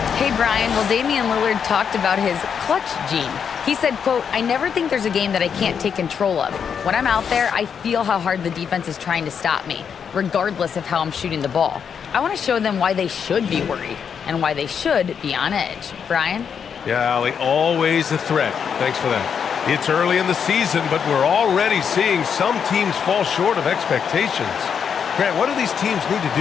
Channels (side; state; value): right; quieter; 7.2 dB